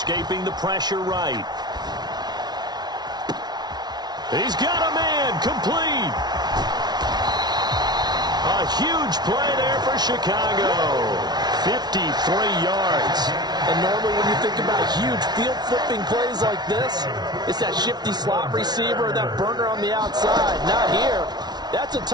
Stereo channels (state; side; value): late; left; 0.19 ms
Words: the pressure right. He's got a man, complete. A huge play there for Chicago. 53 yards. And normally when you think about huge field-flipping plays like this, it's that shifty slot receiver or that burner on the outside. Not here. That's a